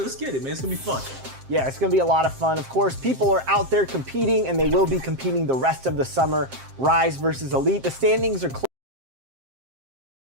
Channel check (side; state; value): left; late; 7.6 ms